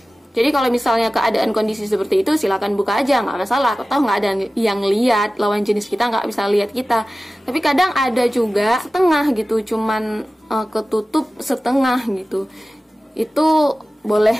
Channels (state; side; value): normal; both; correlation 0.96